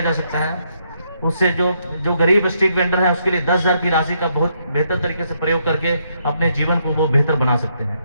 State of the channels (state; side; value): inverted; both; correlation -0.75